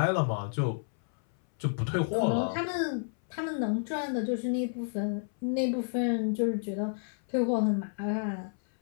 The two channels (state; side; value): silent; right; 58 dB below the other